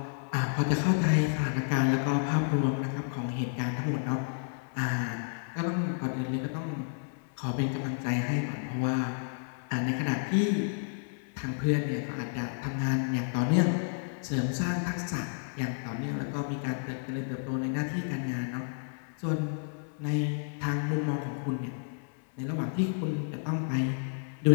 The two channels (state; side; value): silent; right; digital silence